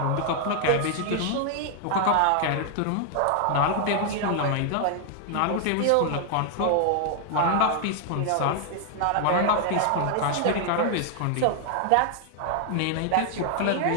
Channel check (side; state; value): both; different; correlation 0.00